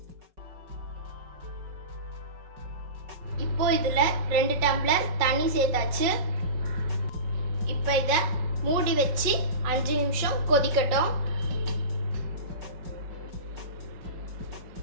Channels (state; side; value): late; left; 5.4 ms